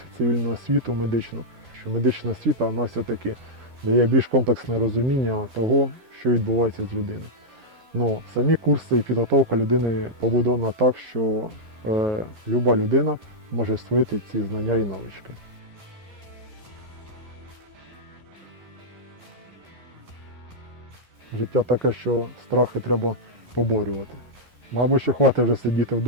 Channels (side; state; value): left; late; 11 ms